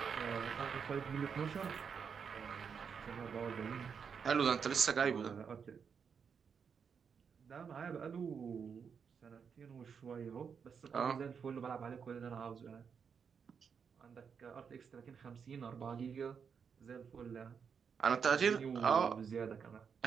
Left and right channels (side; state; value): left; quieter; 6.5 dB